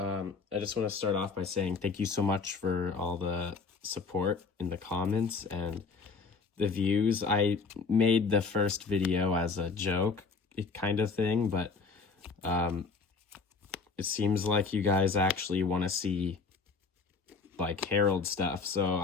just want to start off by saying thank you so much for all the support in the comments and the views. I made the first video as a joke kind of thing, but it seems like you guys actually want to see like Herald stuff, so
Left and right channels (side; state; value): right; quieter; 4.7 dB